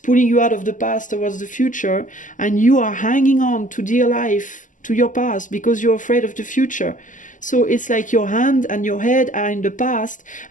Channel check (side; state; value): right; late; 0.37 ms